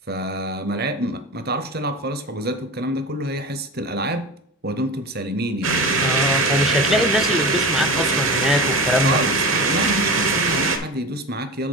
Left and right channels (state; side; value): normal; both; correlation 0.30